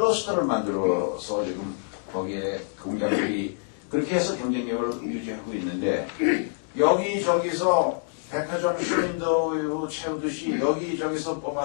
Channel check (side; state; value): right; silent; 61 dB below the other